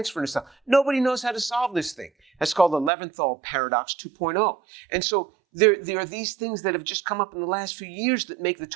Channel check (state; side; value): drops out; left; at 2.9 s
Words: in a cell. Nobody knows how to solve this thing. That's called the Leventhal paradox 2.0. And so there are these things that have just come up in the last few years that make the